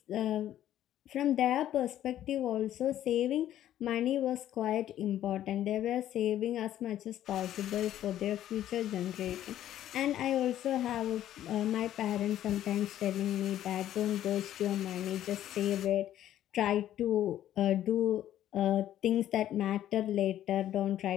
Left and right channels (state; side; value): quieter; right; 12.0 dB